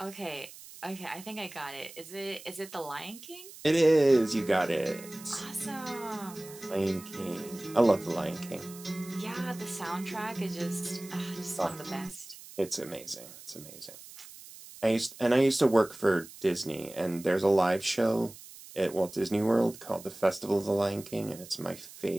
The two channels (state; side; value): noise; right; hiss, 17 dB below the sound